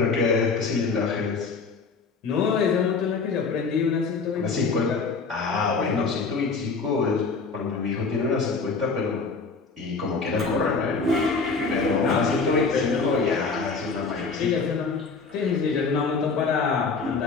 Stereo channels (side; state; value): right; quieter; 4.6 dB